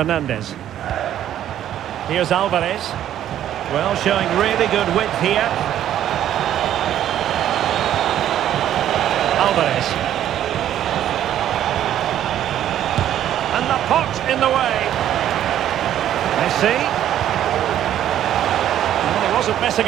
Here's Alvarez. Well, showing really good width here. Alvarez. And the pot in the way. Messi. Well, he wasn't messing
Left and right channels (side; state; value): left; quieter; 11.3 dB